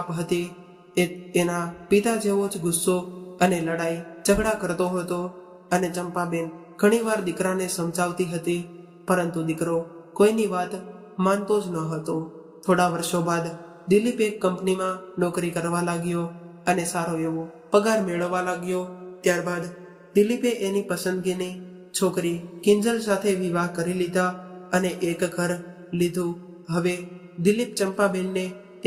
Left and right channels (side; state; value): both; identical; correlation 1.00